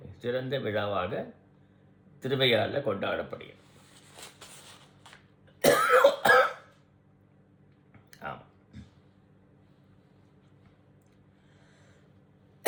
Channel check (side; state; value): both; identical; correlation 1.00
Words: சிறந்த விழாவாக திருவையாறில் கொண்டாடப்படுகிறது. ஆமாம்.